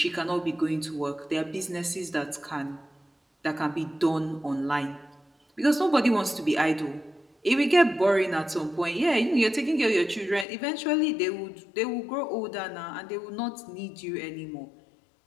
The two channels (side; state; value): right; drops out; at 10.5 s